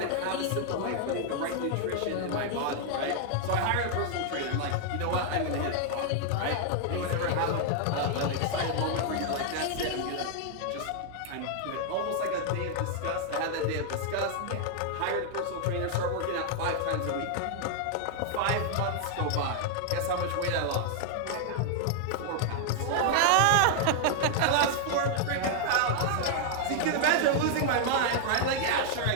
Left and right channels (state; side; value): different; both; correlation 0.00